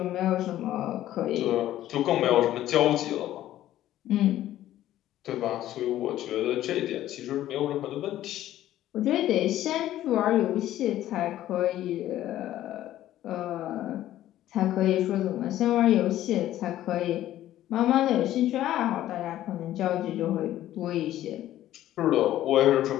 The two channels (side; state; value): right; quieter; 13.3 dB